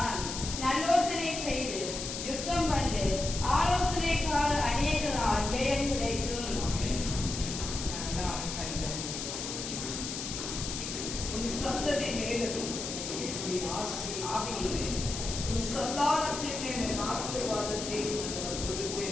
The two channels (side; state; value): left; noise; hiss, 5 dB below the sound